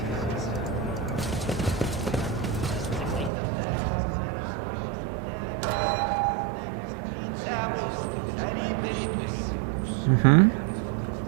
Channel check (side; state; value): left; drops out; at 3.3 s